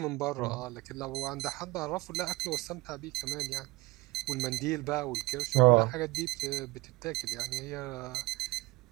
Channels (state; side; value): quieter; left; 22.2 dB